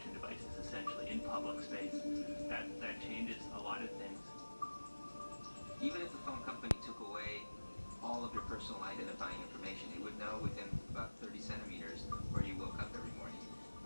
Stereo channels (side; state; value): both; inverted; correlation -1.00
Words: devices essentially in public space, that changes a lot of things. Even if the phone company took away all of your personal identifying information, it would know within about 30 centimeters where you woke up every morning,